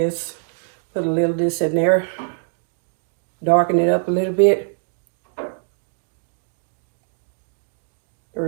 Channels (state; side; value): silent; left; digital silence